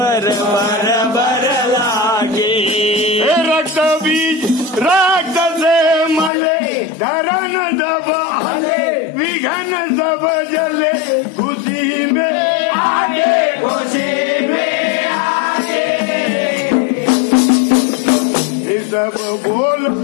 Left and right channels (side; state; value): right; drops out; at 6.3 s